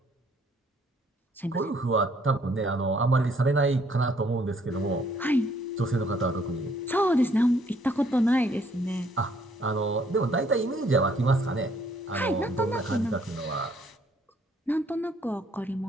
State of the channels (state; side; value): normal; both; correlation 0.65